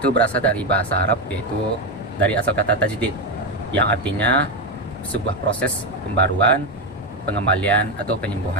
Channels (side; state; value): both; normal; correlation 0.10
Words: berasal dari bahasa Arab, yaitu dari asal kata tajdid, yang artinya sebuah proses pembaruan, pengembalian atau